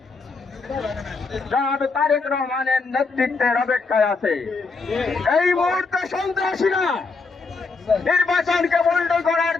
জনাব তারেক রহমানের নেতৃত্বের অপেক্ষায় আছে। এই মুহূর্তে সন্ত্রাসীরা নির্বাচনকে বন্ধ করার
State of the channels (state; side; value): quieter; right; 4.3 dB